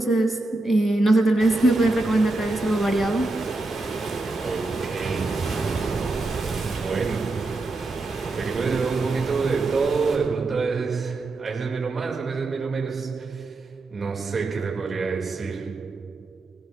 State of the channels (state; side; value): quieter; left; 3.1 dB